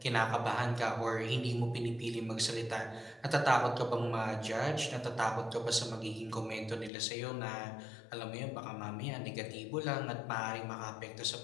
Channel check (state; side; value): drops out; right; at 6.9 s